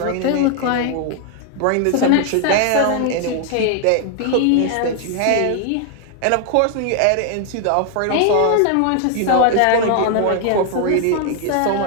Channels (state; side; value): different; both; correlation 0.00